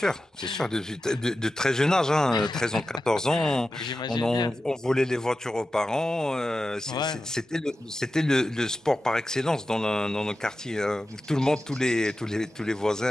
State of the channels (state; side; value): normal; both; correlation 0.92